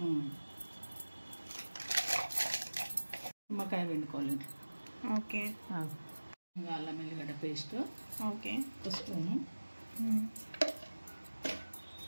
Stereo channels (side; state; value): both; inverted; correlation -1.00